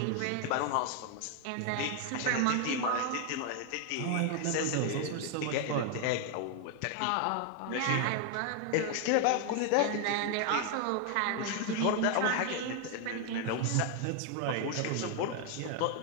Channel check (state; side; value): different; both; correlation 0.00